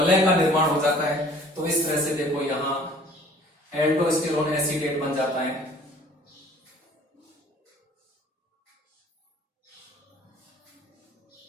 का निर्माण हो जाता है। तो इस तरह से देखो यहां एल्डोस्टेरोन एसीटेट बन जाता है।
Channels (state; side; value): normal; both; correlation 0.52